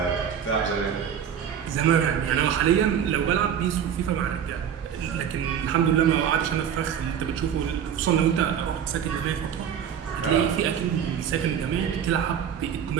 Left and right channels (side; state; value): left; quieter; 8.6 dB